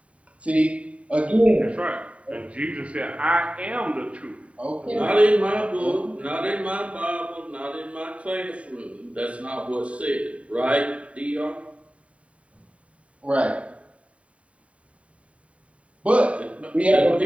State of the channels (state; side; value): late; left; 0.065 ms